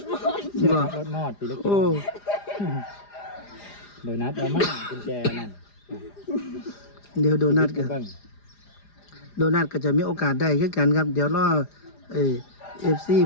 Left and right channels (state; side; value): late; right; 4.9 ms